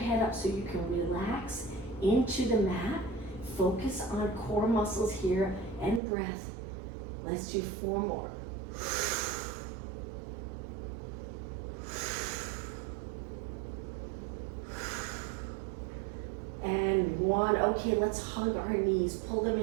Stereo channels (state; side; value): drops out; left; at 6.0 s